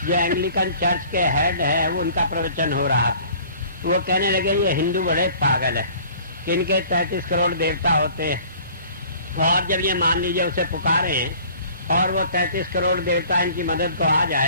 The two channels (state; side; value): inverted; both; correlation -0.50